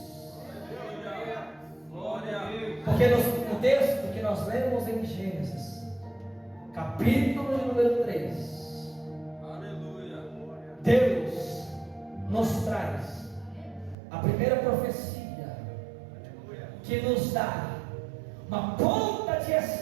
Porque no texto que nós lemos em Gênesis, capítulo número 3, Deus nos traz a primeira profecia que nos dá uma ponta de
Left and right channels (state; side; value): drops out; left; at 14.0 s